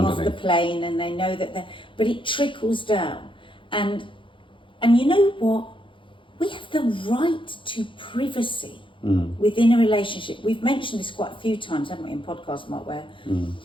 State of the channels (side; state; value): right; late; 0.25 ms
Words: the plane and they know that they're... But it trickles down. And you know what? We have the right to privacy within a relationship. We've mentioned this quite a few times, haven't we, in podcasts, Mark, where